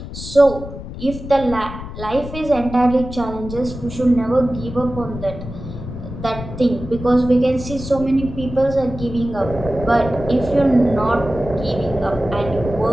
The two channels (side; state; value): left; noise; rumble, 10 dB below the sound